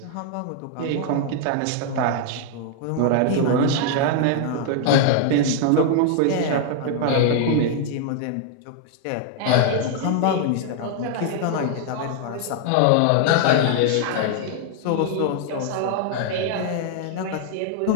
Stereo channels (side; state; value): both; different; correlation 0.00